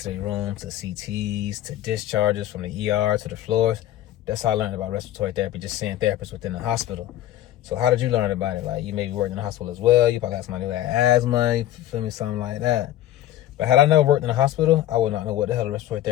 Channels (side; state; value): right; quieter; 13.3 dB